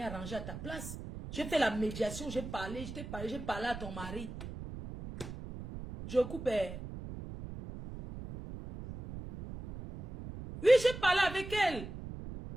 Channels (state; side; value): noise; right; rumble, 10 dB below the sound